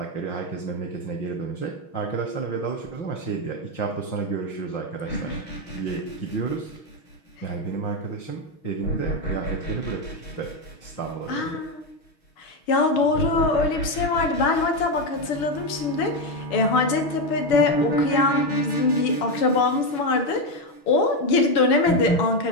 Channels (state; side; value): late; right; 6.4 ms